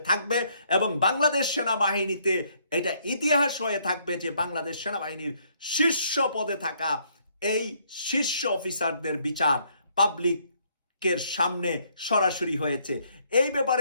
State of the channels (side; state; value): both; inverted; correlation -0.68